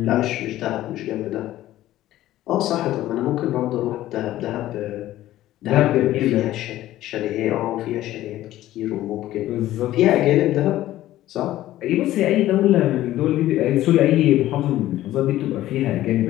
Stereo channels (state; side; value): quieter; right; 14.5 dB